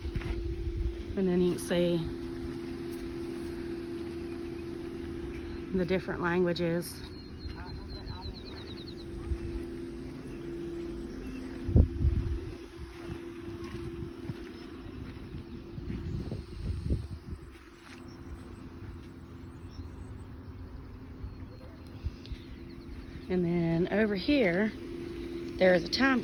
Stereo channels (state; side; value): identical; both; correlation 1.00